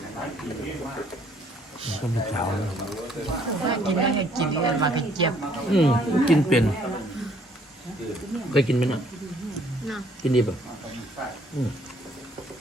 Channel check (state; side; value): normal; both; correlation 0.63